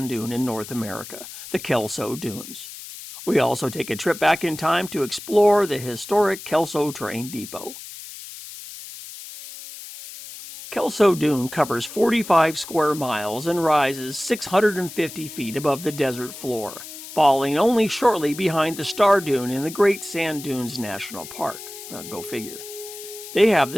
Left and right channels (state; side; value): noise; left; hiss, 13 dB below the sound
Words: dune in North America, the Kelso Dunes. We also take a trip back in time to explore the historic Kelso Train Depot. Kelso Dune covers 45 square miles and rises 650 feet above the desert floor, falling only shortly behind the Star Dune in the Great Sand Dunes National Park. Go figure. They have